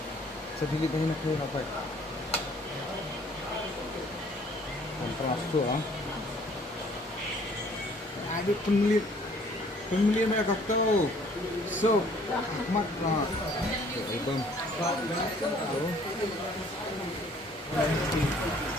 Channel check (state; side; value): normal; both; correlation 0.58